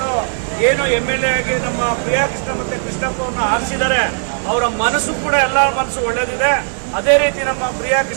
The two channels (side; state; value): left; silent; digital silence